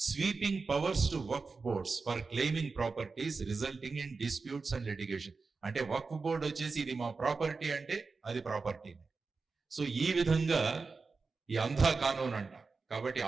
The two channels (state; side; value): quieter; left; 4.3 dB